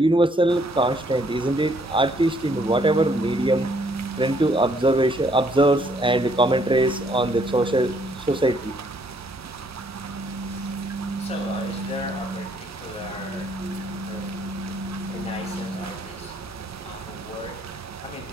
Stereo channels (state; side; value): normal; both; correlation 0.66